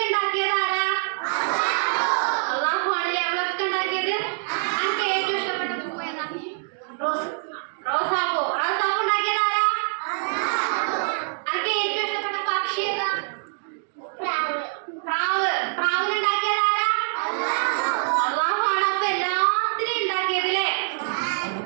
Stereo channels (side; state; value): left; silent; digital silence